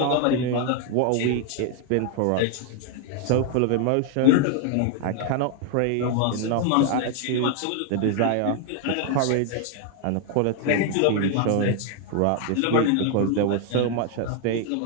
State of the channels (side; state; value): both; different; correlation 0.00